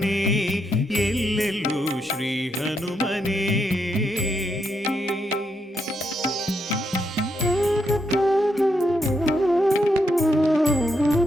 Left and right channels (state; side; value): normal; both; correlation 0.79